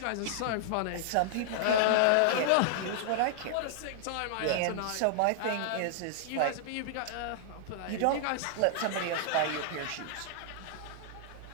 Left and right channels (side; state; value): both; different; correlation -0.01